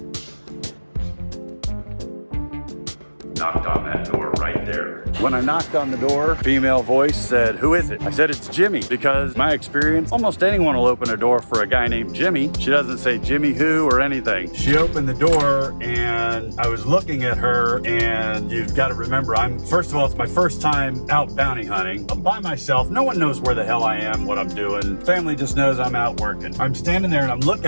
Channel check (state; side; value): inverted; both; correlation -1.00